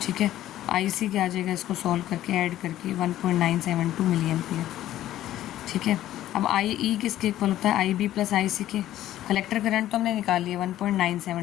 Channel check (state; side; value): quieter; right; 13.4 dB